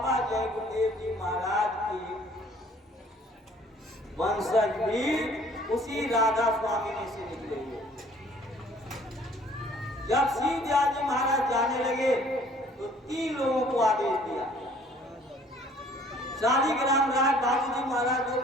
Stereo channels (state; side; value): normal; both; correlation 0.56